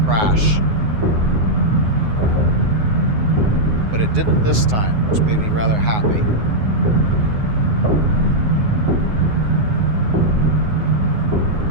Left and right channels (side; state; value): left; late; 9.5 ms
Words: But it didn't this time, which made me rather happy.